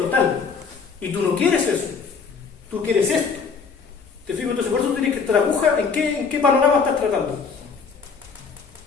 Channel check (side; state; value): right; quieter; 5.4 dB